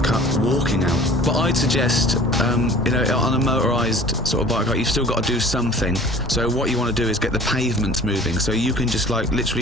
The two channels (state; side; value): normal; both; correlation 0.46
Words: shortcut walking out. But I'd suggest, you know, on a motorised sort of bike ride, you've still got to do something. So what you want to do is get the pavements moving, so you can just like